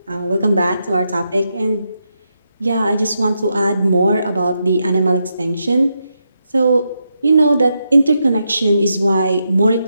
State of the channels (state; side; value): inverted; both; correlation -0.84